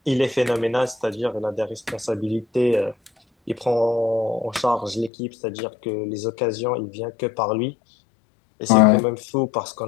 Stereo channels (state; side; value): drops out; right; at 5.1 s